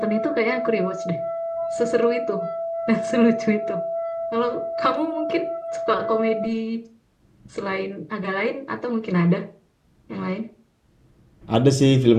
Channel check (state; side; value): identical; both; correlation 1.00